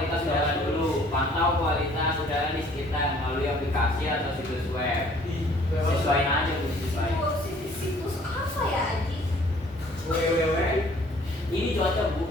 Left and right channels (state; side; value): normal; both; correlation 0.57